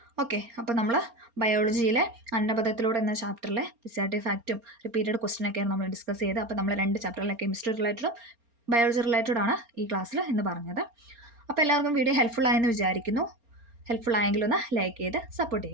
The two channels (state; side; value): late; left; 4.3 ms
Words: ഓക്കെ. അപ്പോൾ നമ്മൾ ബയോളജിയിലെ അന്നപദത്തിലൂടെ എന്ന ചാപ്റ്ററിലെ SAT ഫാക്റ്റും റിപ്പീറ്റഡ് ക്വസ്റ്റ്യനൊക്കെയാണ് നമ്മൾ ഡിസ്കസ് ചെയ്തത്. അപ്പോൾ നമ്മൾ 2 ചാപ്റ്ററിലെ കെമിസ്ട്രി റിലേറ്റഡും ബയോളജി റിലേറ്റഡ് ആണ് ഈ ക്ലാസ്സിൽ എന്ന് പറഞ്ഞത്. അപ്പോൾ എല്ലാവർക്കും വീഡിയോ ഹെൽപ്ഫുൾ ആയെന്ന് വിചാരിക്കുന്നു. ഹെൽപ്ഫുൾ ആയെങ്കിൽ ഒന്ന് ലൈക്ക് ചെയ്ത് സപ്പോർട്ട്